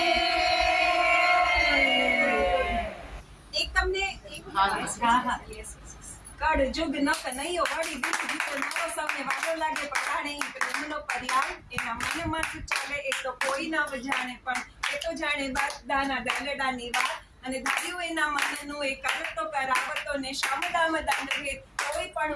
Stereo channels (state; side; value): identical; both; correlation 1.00